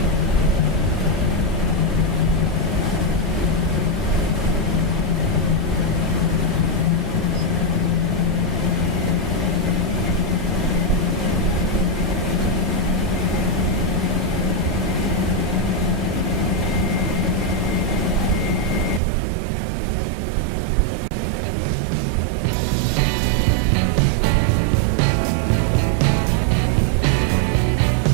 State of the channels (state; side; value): drops out; left; at 19.0 s